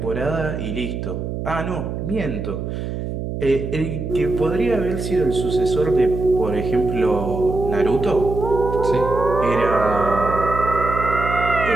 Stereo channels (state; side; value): noise; right; hum, 5 dB below the sound